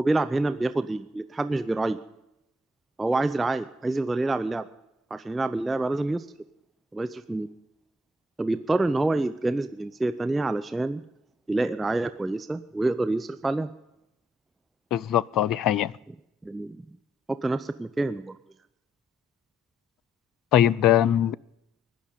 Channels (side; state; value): both; normal; correlation 0.73